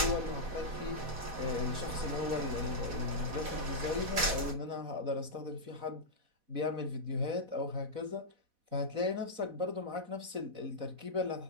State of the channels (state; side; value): late; left; 4.1 ms